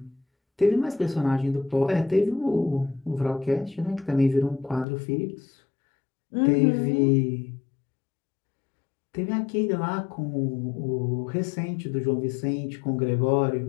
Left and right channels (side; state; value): right; drops out; at 4.9 s